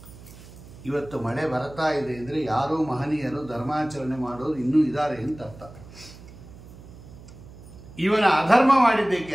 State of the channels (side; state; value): right; noise; hum, 18 dB below the sound